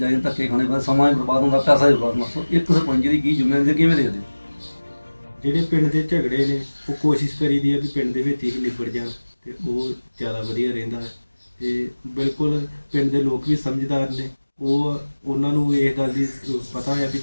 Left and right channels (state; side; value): inverted; both; correlation -1.00